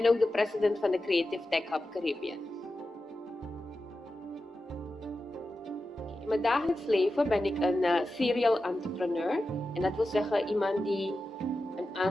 ook de president van de Creative Tech Hub Caribbean. In mijn dagelijks leven ben ik een serial entrepreneur. En dat wil zeggen iemand die een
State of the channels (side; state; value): both; normal; correlation 0.92